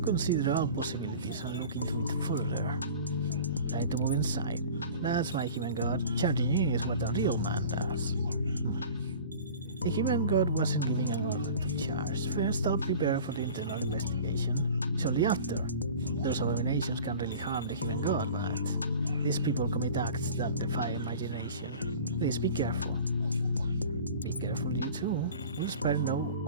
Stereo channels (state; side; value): inverted; both; correlation -0.41